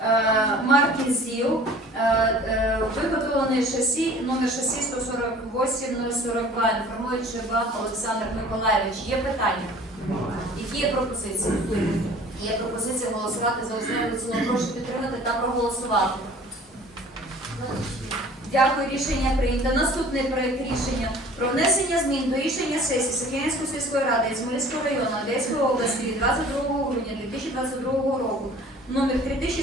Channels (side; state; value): both; normal; correlation 0.48